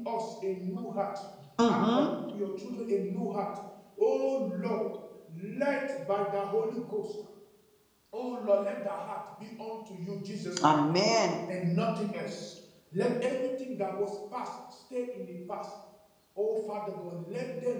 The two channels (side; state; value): both; identical; correlation 1.00